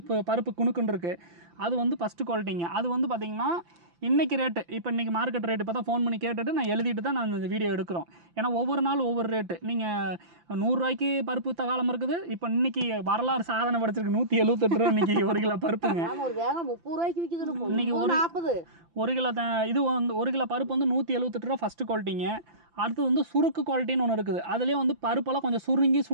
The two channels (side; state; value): left; late; 5.9 ms